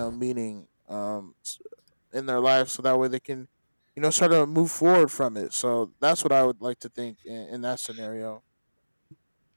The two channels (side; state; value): both; inverted; correlation -1.00